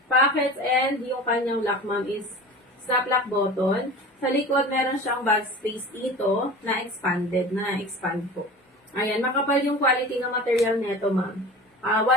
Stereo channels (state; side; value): normal; both; correlation 0.36